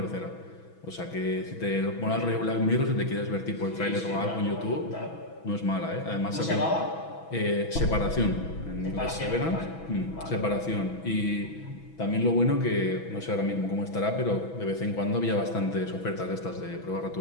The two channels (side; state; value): right; late; 6.1 ms